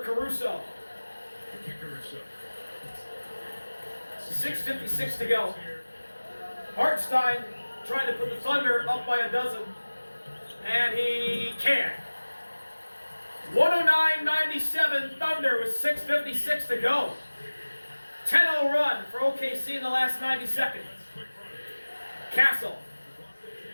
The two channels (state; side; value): inverted; both; correlation -1.00